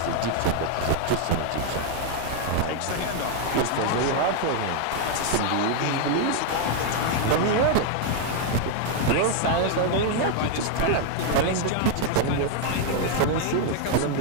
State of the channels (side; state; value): both; different; correlation 0.00